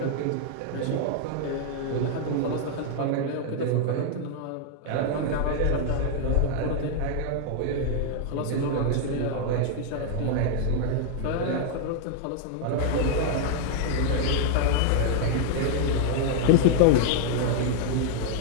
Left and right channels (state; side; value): different; both; correlation 0.00